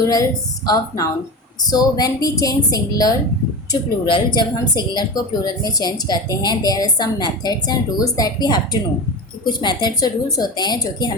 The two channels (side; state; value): both; normal; correlation 0.25